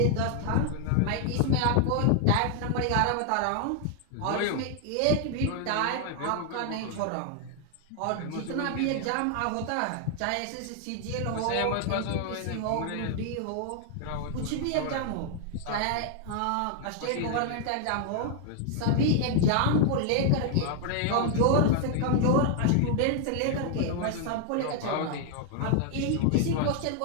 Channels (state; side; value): different; both; correlation 0.00